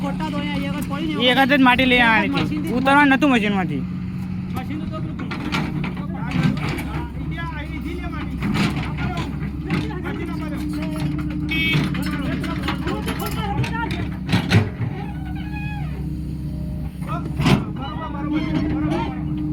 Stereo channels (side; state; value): both; identical; correlation 1.00